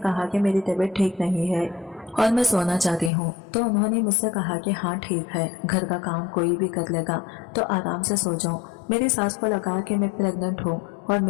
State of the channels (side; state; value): right; drops out; at 3.1 s